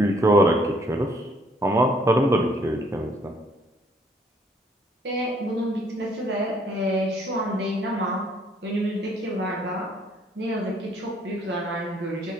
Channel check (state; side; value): normal; both; correlation 0.64